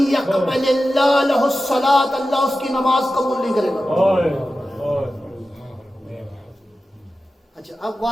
اللہ لہ الصلاۃ، اللہ اس کی نماز قبول نہیں کرے گا۔ اچھا اب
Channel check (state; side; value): normal; both; correlation 0.93